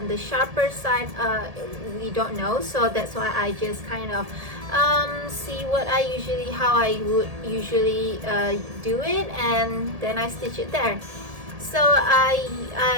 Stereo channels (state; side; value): late; left; 1.7 ms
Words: the sharper side? We don't know. So that's why I just kind of see how I would usually do it, and then I stitch it there. So